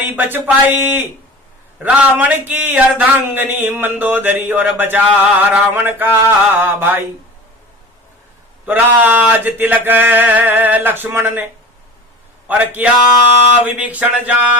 बच पाई, रावण की अर्धांगनी मंदोदरी, और बचा रावण का भाई। तो राज तिलक लक्ष्मण ने और किया विभीषण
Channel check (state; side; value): normal; both; correlation 0.36